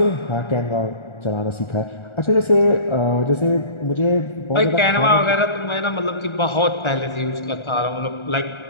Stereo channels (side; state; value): right; late; 1.4 ms